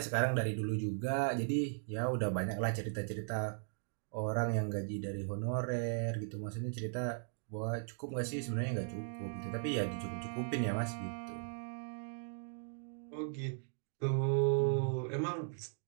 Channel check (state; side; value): silent; left; digital silence